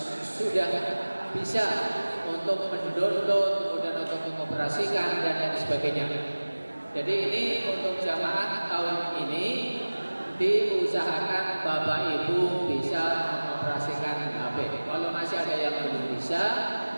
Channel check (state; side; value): inverted; both; correlation -1.00